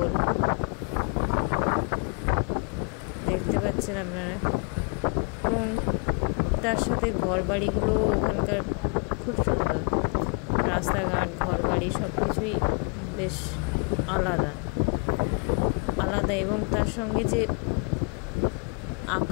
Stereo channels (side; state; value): right; quieter; 36.3 dB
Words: দেখতে পাচ্ছেন আপনারা। এবং তার সাথে ঘর বাড়িগুলো ওখানকার খুব সুন্দর। রাস্তাঘাট, ঘর বাড়ি সব কিছুই বেশ আলাদা আলাদা। এবং তার সঙ্গে যে